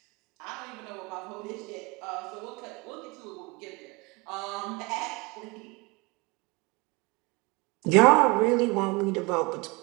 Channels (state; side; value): quieter; left; 26.2 dB